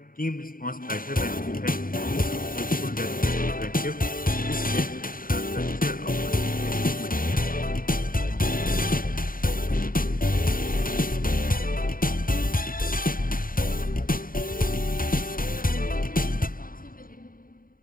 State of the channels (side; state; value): right; late; 0.41 ms